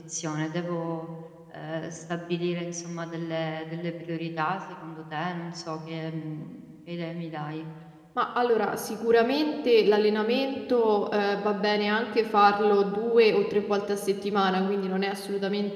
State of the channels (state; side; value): identical; both; correlation 1.00